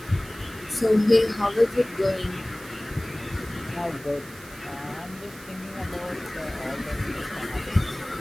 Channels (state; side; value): noise; right; hiss, 19 dB below the sound